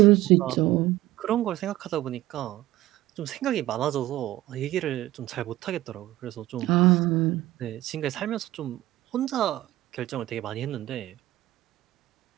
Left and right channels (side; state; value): left; quieter; 16.0 dB